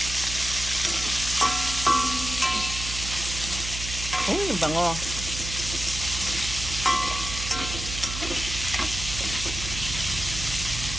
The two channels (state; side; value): noise; right; hum, 7 dB below the sound